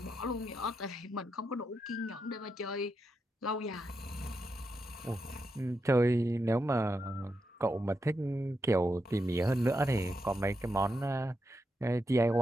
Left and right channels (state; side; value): normal; both; correlation 0.85